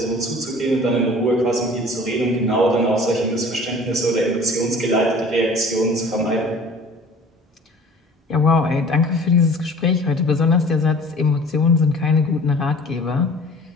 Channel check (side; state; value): both; normal; correlation 0.47